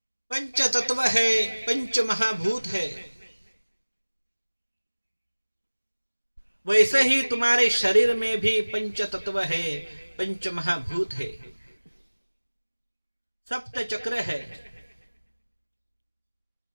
पंच तत्व है, पंच महाभूत है। वैसे ही तुम्हारे शरीर में भी पंच तत्व है, पंच महाभूत है, सप्त चक्र है।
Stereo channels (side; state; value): both; inverted; correlation -1.00